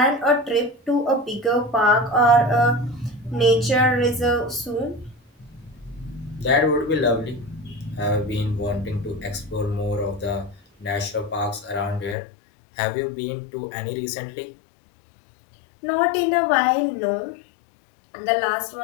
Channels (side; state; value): right; drops out; at 12.2 s